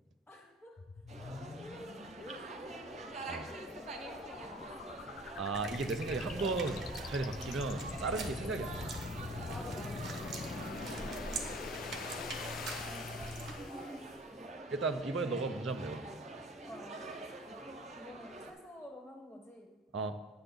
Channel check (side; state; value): both; normal; correlation 0.47